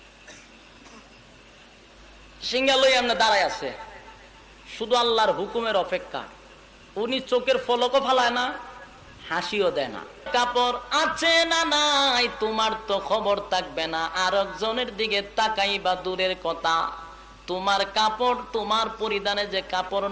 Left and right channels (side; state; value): both; identical; correlation 1.00